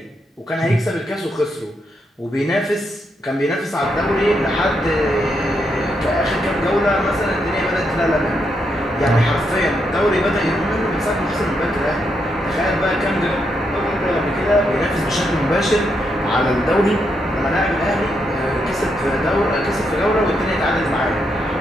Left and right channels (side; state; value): both; normal; correlation 0.80